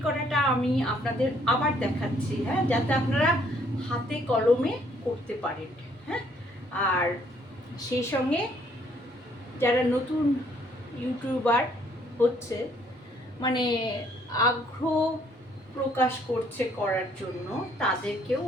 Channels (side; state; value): both; normal; correlation 0.65